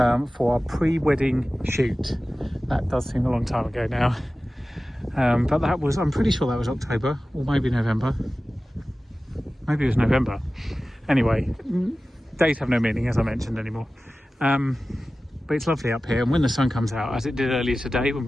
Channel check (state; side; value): normal; both; correlation 0.96